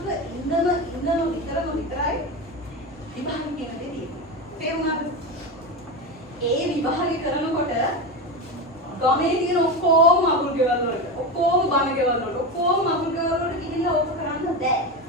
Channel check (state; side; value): normal; both; correlation 0.19